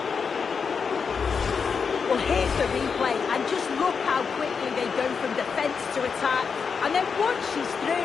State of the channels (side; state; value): right; quieter; 5.8 dB